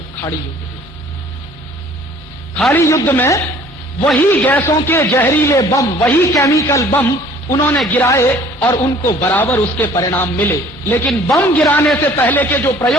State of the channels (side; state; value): both; normal; correlation 0.53